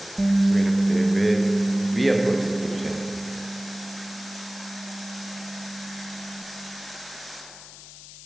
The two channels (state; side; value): noise; left; hiss, 16 dB below the sound